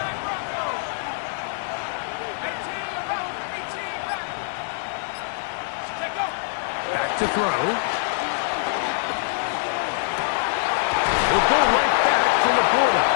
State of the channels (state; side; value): silent; right; digital silence